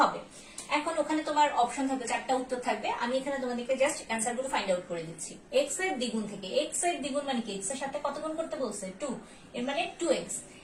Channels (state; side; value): identical; both; correlation 1.00